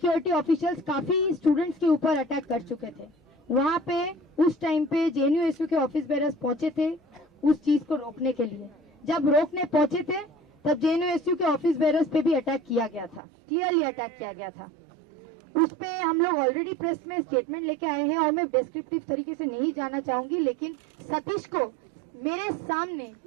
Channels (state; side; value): drops out; left; at 13.2 s